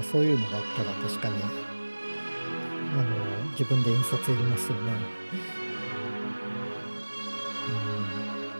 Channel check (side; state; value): both; inverted; correlation -1.00